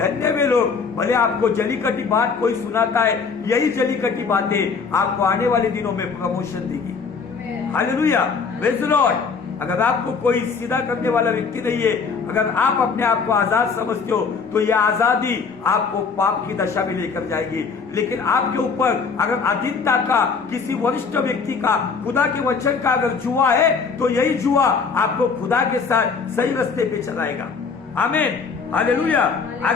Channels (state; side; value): quieter; right; 5.2 dB